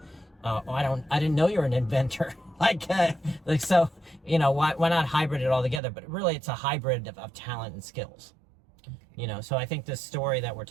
I didn't know you're an inventor. why not hybrid it all together? But really, it's a hybrid of talent and skills. So I think this story that we're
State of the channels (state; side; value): drops out; left; at 5.8 s